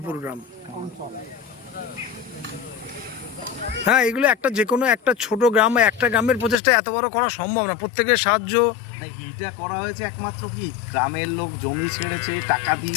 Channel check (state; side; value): drops out; right; at 6.6 s